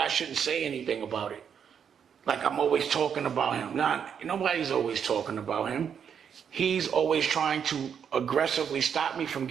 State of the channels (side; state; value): left; quieter; 7.7 dB